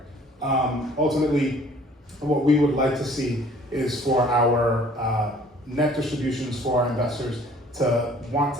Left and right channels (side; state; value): both; normal; correlation 0.54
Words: Ultimately, what we would like to see is for our net distributions for our investors to want